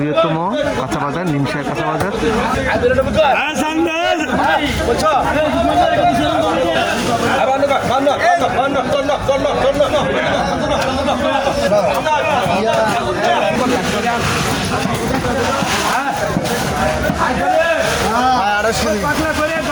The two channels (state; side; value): identical; both; correlation 1.00